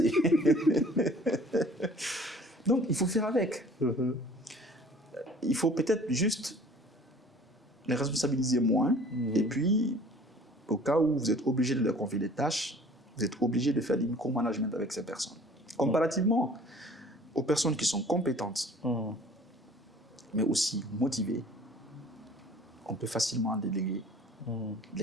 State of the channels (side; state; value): both; normal; correlation 0.50